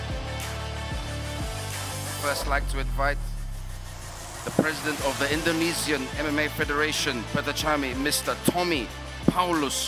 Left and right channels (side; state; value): both; identical; correlation 1.00